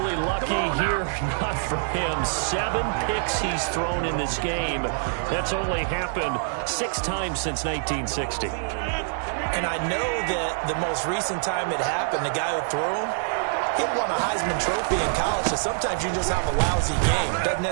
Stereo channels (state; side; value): silent; left; digital silence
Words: lucky here. Not for him. 7 picks he's thrown in this game. That's only happened 6 times since 1960. And I know that the most recent time it happened, the guy who threw him, he won a Heisman Trophy in college, so sometimes you just have a lousy game. It doesn't